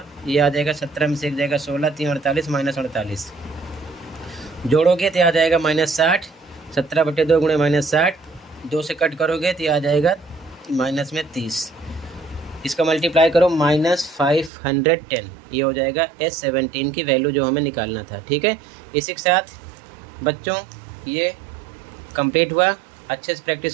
ये आ जाएगा 17 में से 1 जाएगा 16, 3 48 -48, जोड़ोगे तो आ जाएगा -60। 17/2 गुणे -60, 2 से कट करोगे तो ये आ जाएगा -30। इसका मल्टीप्लाई करो -510, ये हो जाएगा S17 की वैल्यू जो हमें निकालना था, ठीक है। इसी के साथ बच्चों ये कंप्लीट हुआ। अच्छे से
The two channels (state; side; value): drops out; left; at 14.5 s